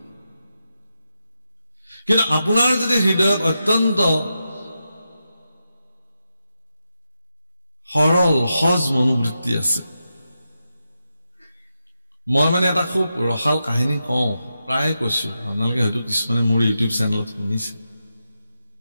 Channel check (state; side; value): inverted; both; correlation -0.88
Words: কিন্তু আপোনাৰ যদি হৃদয়ত অত্যন্ত সৰল সহজ মনোবৃত্তি আছে মই মানে এটা খুব ৰসাল কাহিনী কওঁ প্ৰায় কৈছো আপোনালোকে হয়তো কিছুমানে মোৰ ইউটিউব চেনেলত শুনিছে